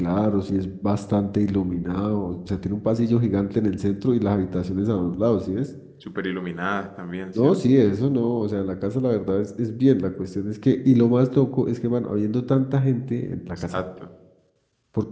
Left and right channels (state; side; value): identical; both; correlation 1.00